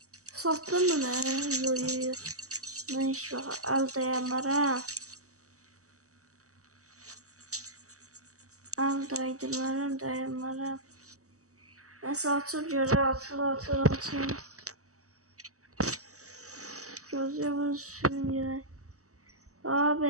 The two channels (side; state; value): left; late; 0.66 ms